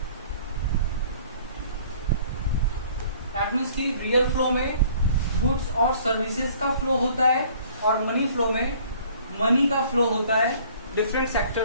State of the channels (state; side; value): inverted; both; correlation -0.54